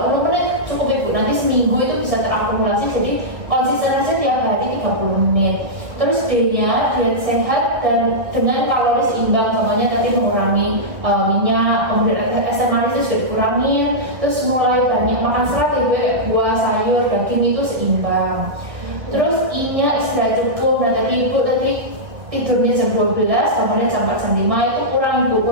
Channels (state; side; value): late; left; 1.8 ms